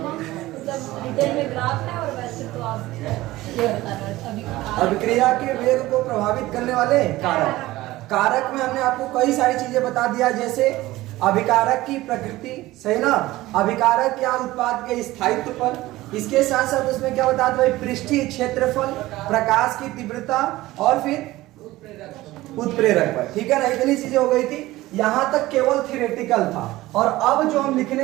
मतलब डिटेल में ग्राफ है और वैसे तो आप ये बता रहे थे अभी अभिक्रिया के वेग को प्रभावित करने वाले कारक। कारक में हमने आपको कई सारी चीजें बता दिया, जैसे अभिकारक की प्रकृति, सही ना, अभिकारक क्या उत्पाद के स्थायित्व पर, इसके साथ साथ उसमें क्या बता दो, पृष्ठीय क्षेत्रफल, प्रकाश की तीव्रता और फिर उत्प्रेरक पर। ठीक है ना, इतनी चीजें हो गई थी। यहां तक केवल थियोरेटिकल था, और अब जो हम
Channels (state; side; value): quieter; left; 17.6 dB